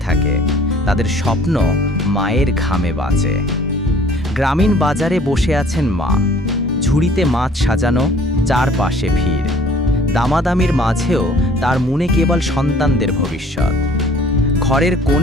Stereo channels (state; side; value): normal; both; correlation 0.53